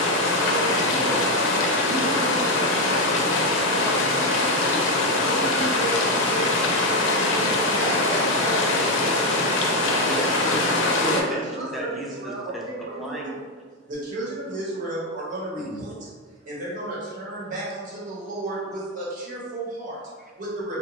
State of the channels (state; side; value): normal; both; correlation 0.05